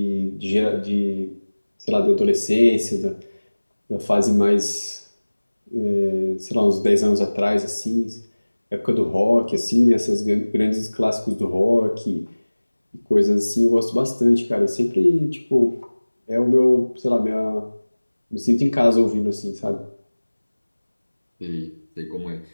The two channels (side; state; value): both; inverted; correlation -1.00